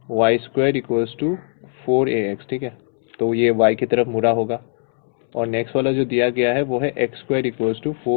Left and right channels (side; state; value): right; silent; 66 dB below the other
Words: y² equals to 4ax, ठीक है, तो ये y की तरफ मुड़ा होगा, और नेक्स्ट वाला जो दिया गया है वो है x² इक्वल्स टू